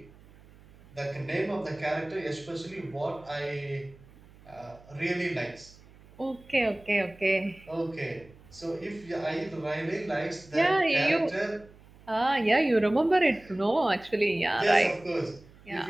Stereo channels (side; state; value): right; noise; hum, 24 dB below the sound